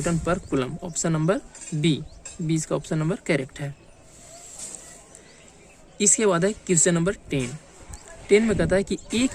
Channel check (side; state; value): both; identical; correlation 1.00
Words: per coulomb. Option number B, इसका ऑप्शन नंबर करेक्ट है। इसके बाद है क्वेश्चन नंबर 10 में कहता है कि